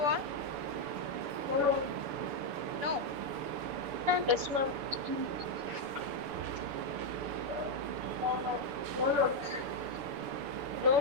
No. Yes, ma'am. No,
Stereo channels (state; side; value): late; left; 7.0 ms